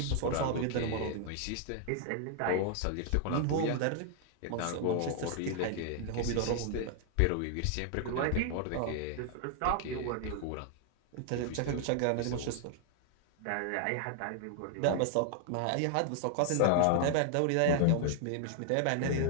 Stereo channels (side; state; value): both; different; correlation 0.00